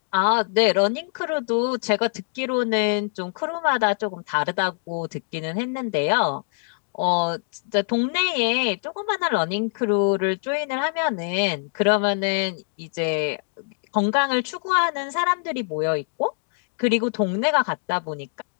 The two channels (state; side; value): silent; right; digital silence